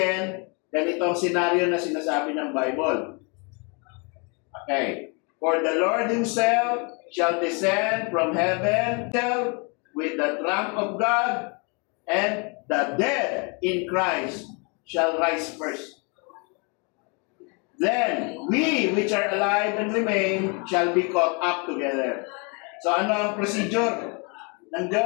ganito ang senaryo na sinasabi ng Bible. Okay. For the Lord Himself shall descend from heaven with the trump of God, and the dead in Christ shall rise first. Then we which are alive and remain shall be caught up together. So ano ang procedure ng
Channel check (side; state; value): right; quieter; 33.3 dB